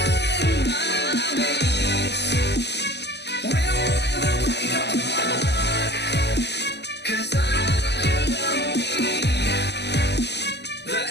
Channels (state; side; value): late; right; 0.50 ms